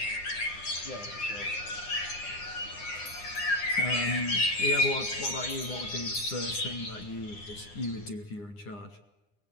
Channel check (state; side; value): late; right; 9.8 ms